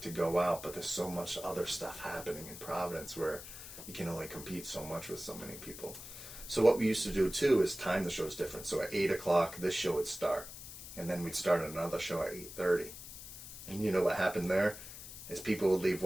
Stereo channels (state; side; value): noise; left; hiss, 12 dB below the sound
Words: to go out, but there's so much other stuff happening in Providence where you can only compete so much with so many people. So what we used to do too is time the shows different. So at 8 o'clock, this show would start, and then we'd start another show at 8:30. And you know what happened there? Is people would leave